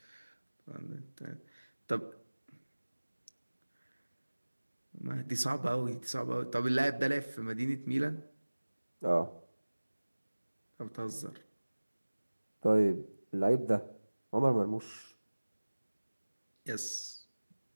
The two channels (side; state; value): both; inverted; correlation -1.00